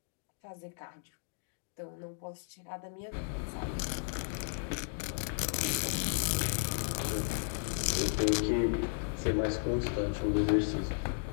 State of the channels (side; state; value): right; silent; digital silence